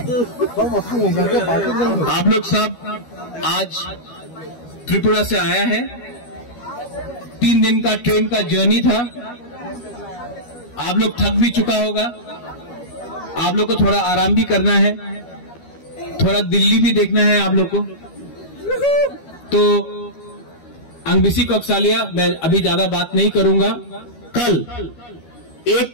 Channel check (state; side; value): late; right; 12 ms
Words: आप लोग सब आज त्रिपुरा से आया है। 3 दिन का ट्रेन का जर्नी था। आप लोग थक भी चुका होगा। आप लोग को थोड़ा आराम भी करना है, थोड़ा दिल्ली भी देखना है आप लोग को। तो अंगबिसी कोकसालिया मैं अभी ज्यादा बात नहीं करूंगा। कल